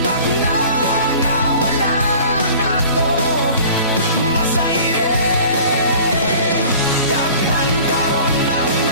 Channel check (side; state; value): both; inverted; correlation -0.46